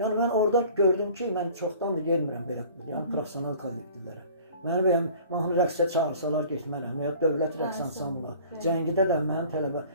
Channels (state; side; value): inverted; both; correlation -0.48